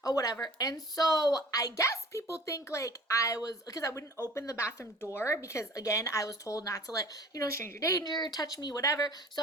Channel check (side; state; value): both; normal; correlation 0.44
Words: or whatever. And so I guess people think like I was, because I wouldn't open the bathroom door because again, I was told not to let, stranger danger, touch me, whatever.